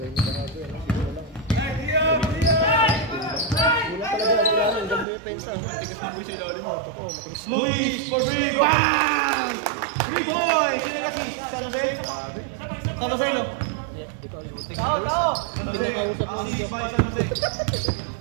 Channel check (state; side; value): drops out; left; at 5.1 s